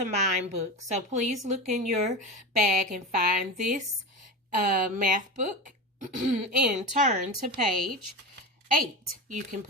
Mind book. So please look in your bag and find this math book and turn to page 8. You can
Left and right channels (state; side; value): normal; both; correlation 0.24